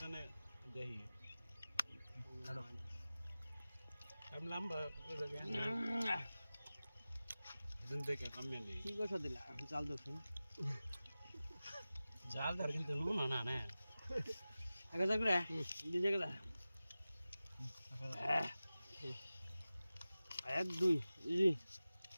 কি কথা দিলা জাল দেখুন জাল ধর কিন্তু নুন না না এক হাজার করে দিতে গেলা এক দুই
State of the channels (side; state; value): both; inverted; correlation -0.96